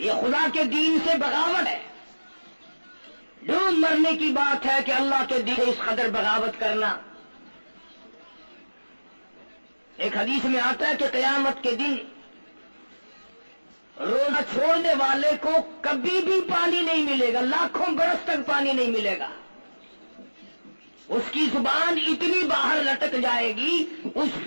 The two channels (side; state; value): both; inverted; correlation -1.00